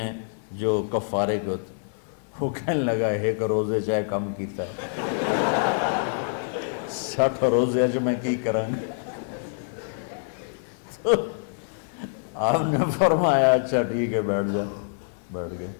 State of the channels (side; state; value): right; silent; 61 dB below the other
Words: جو کفارے کے ہوتے ہیں۔ وہ کہنے لگا ایک روزے چاہے کم کیتا ہے 60 روزے اچ میں کی کروں گی؟ تو آپ نے فرمایا اچھا ٹھیک ہے بیٹھ جاؤ۔ بیٹھ گئے۔